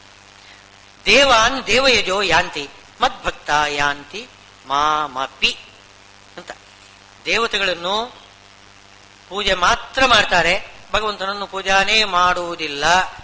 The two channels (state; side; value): identical; both; correlation 1.00